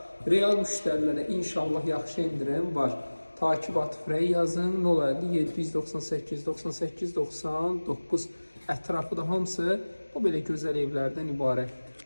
Real müştərilərə inşallah yaxşı indirim var. Takib Atifrəy yazın. 050 798 98 99 ətrafı da hamısı bu belə gözəl evlərdən ibarətdir.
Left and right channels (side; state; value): both; inverted; correlation -1.00